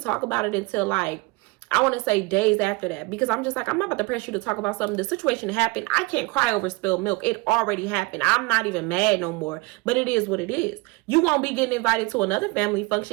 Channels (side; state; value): left; quieter; 25.3 dB